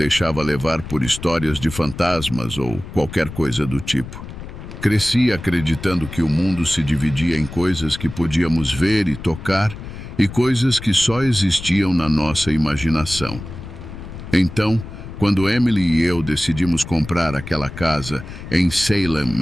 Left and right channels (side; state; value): left; noise; rumble, 12 dB below the sound